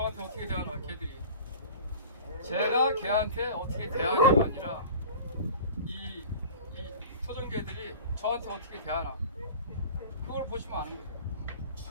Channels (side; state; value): both; inverted; correlation -0.39